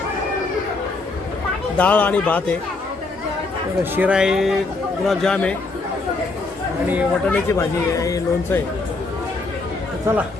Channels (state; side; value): quieter; right; 3.6 dB